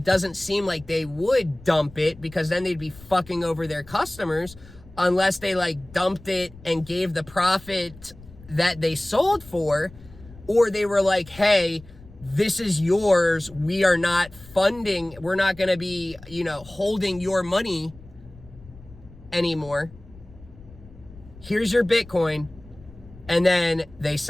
doesn't seem like they would dump it, because then they'd be fucking over their customers, unless they dumped it and gave the profit that they sold for, or they were like, hey, this is yours. We are not funding. We're not going to be, holding your money anymore. Here's your Bitcoin. And then they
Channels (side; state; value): left; noise; rumble, 21 dB below the sound